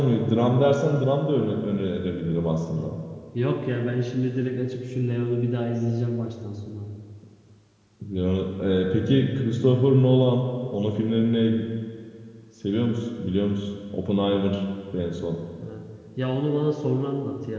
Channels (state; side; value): identical; both; correlation 1.00